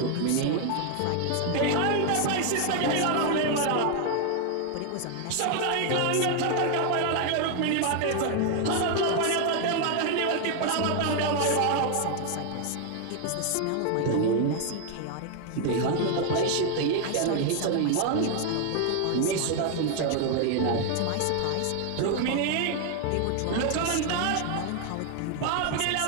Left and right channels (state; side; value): different; both; correlation 0.00